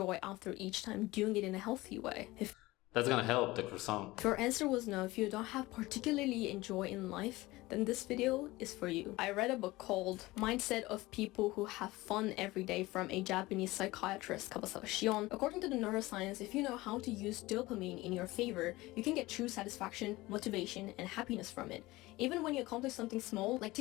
after each time doing it in a healthy way? That's gonna help the croissant. If your answer was no, if you don't have particularly enjoy in life, then this video is for you. I read a book called Mindset of People Who Have Fun Every Day from a Japanese psychiatrist, Kabasawa Shion. According to the neuroscience, if you know how to use dopamine in your favor, you can get true satisfaction, motivation, and happiness from it. Even when you accomplish something small, like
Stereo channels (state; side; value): quieter; right; 19.8 dB